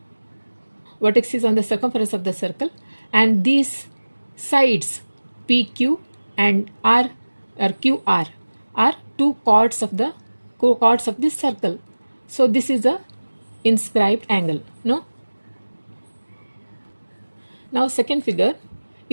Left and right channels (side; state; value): both; inverted; correlation -1.00